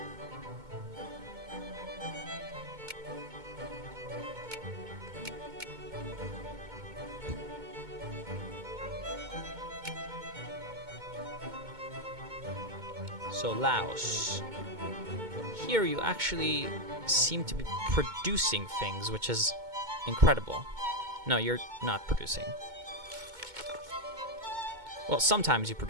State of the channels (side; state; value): left; late; 2.2 ms